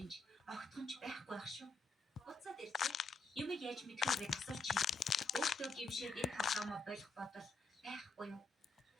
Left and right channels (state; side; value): quieter; right; 3.7 dB